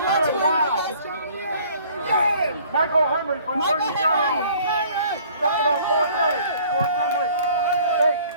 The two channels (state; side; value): inverted; both; correlation -0.55